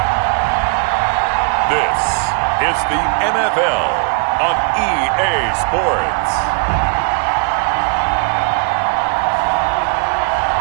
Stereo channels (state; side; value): quieter; left; 39.6 dB